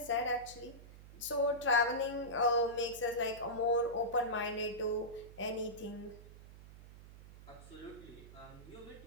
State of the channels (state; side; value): noise; right; hum, 17 dB below the sound